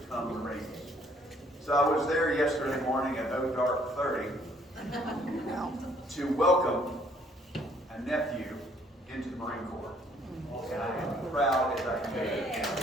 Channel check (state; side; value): normal; both; correlation 0.63